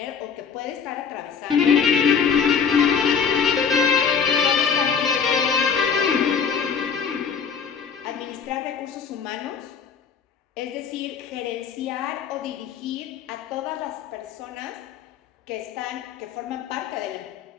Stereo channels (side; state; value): right; quieter; 6.5 dB